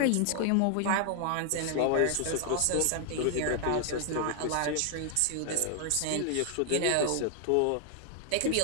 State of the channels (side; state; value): both; different; correlation 0.00